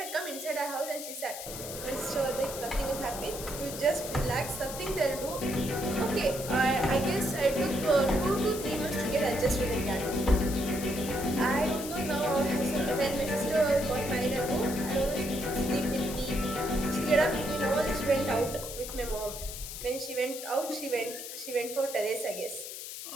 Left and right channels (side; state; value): left; noise; hiss, 9 dB below the sound